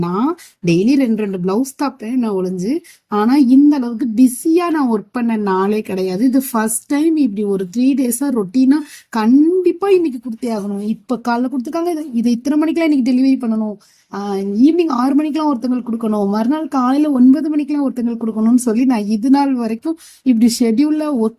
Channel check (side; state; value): both; identical; correlation 1.00